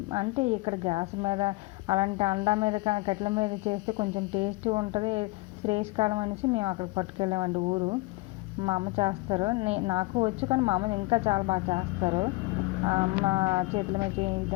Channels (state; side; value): quieter; right; 23.0 dB